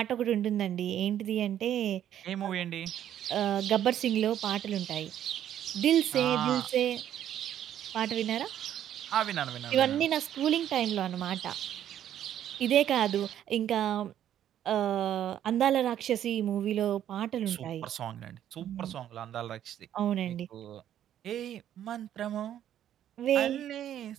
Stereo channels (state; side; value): quieter; left; 10.8 dB